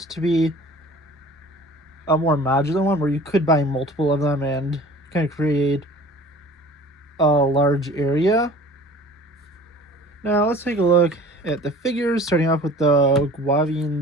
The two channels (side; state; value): both; normal; correlation 0.45